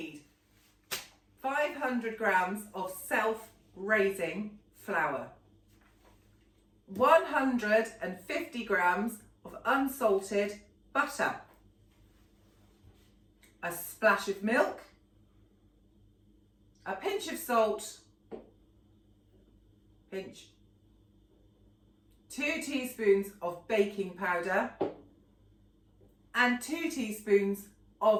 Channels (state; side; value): identical; both; correlation 1.00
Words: 500 grams of self-raising flour, 150 grams of unsalted butter, a splash of milk, a pinch of salt, 2 teaspoons of baking powder, and 2 teaspoons